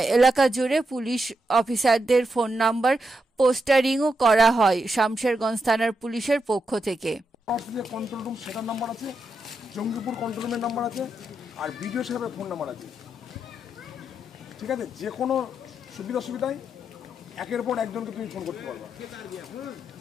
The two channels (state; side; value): normal; both; correlation 0.84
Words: এলাকা জুড়ে পুলিশ অফিসারদের ফোন নাম্বার পোস্টারিংও করা হয় শামশেরগঞ্জ থানার পুলিশের পক্ষ থেকে। কন্ট্রোল রুম সেটার নাম্বার আছে, জঙ্গিপুর কন্ট্রোল রুমের নাম্বার আছে, আর বিডিও সাহেবের ফোন নাম্বার আছে। ঠিক আছে, যে কোনো সুবিধায় একের পর একজনকে তুমি ফোন করতে পারবা।